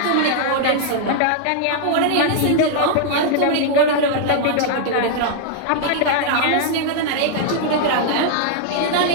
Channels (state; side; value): different; both; correlation -0.01